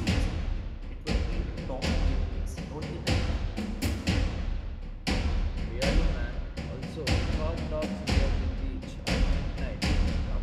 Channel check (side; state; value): both; identical; correlation 1.00